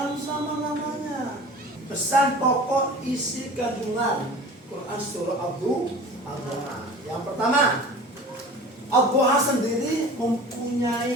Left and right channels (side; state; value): both; normal; correlation 0.40